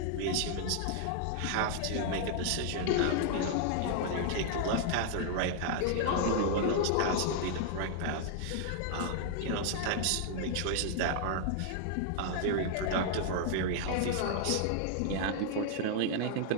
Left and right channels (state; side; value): different; both; correlation 0.00